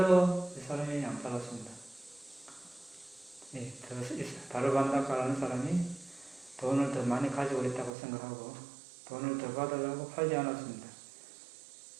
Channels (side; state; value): left; drops out; at 7.9 s